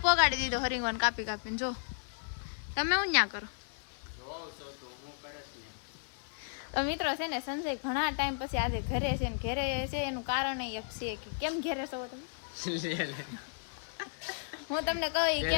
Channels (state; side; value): silent; right; digital silence